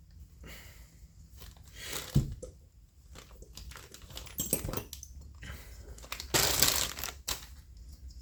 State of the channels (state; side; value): identical; both; correlation 1.00